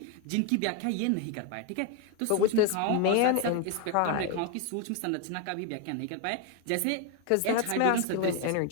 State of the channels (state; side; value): different; both; correlation 0.01